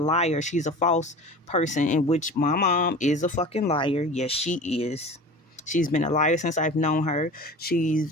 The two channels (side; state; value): both; normal; correlation 0.37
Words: She's a false person, in which my mom is a fucking liar. Yes, she is. She's been a liar since I've known her.